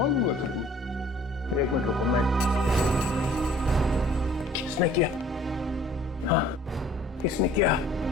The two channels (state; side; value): normal; both; correlation 0.53